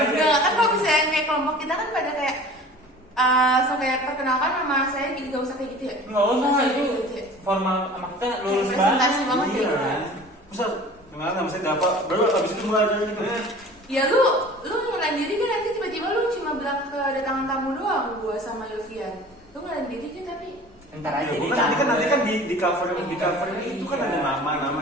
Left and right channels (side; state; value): both; normal; correlation 0.43